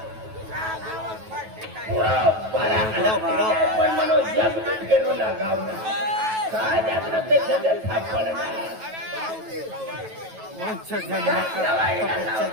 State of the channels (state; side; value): late; left; 9.2 ms